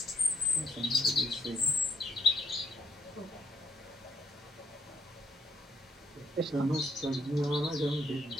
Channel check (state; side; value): normal; both; correlation 0.71